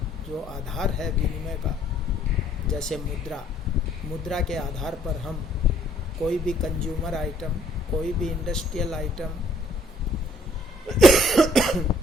जो आधार है विनिमय का, जैसे मुद्रा के आधार पर हम कोई भी कंज्यूमर आइटम, कोई भी इंडस्ट्रियल आइटम,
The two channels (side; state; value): both; normal; correlation 0.62